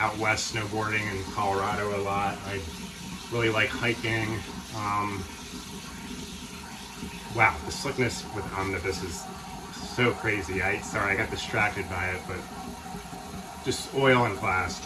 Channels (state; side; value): identical; both; correlation 1.00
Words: west snowboarding in Colorado a lot. I really like hiking. Wow, the slickness with Omnibus is so crazy. Sorry, I got distracted by it, but just oil and glass.